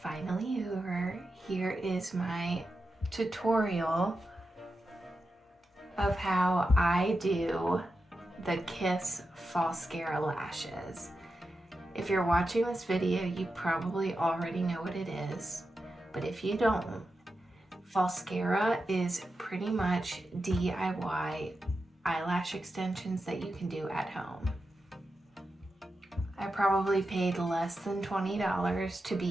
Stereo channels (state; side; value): normal; both; correlation 0.90